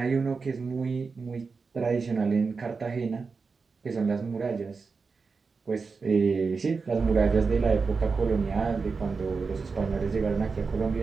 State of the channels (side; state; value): left; quieter; 4.7 dB